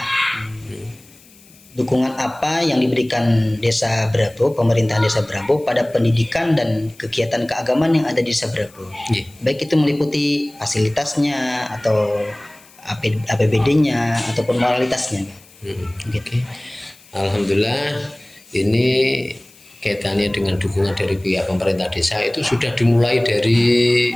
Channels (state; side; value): noise; left; hiss, 26 dB below the sound